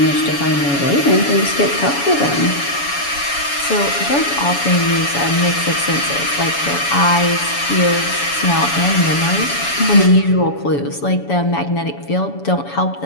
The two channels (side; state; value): right; late; 7.1 ms